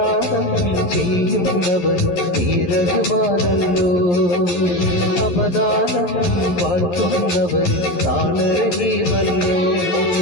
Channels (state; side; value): late; right; 11 ms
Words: ചെയ്യുന്നവർ നീരകുമാരല്ലോ അവദാനം വാഴ്ത്തുന്നവർ താളരഹീമല്ലോ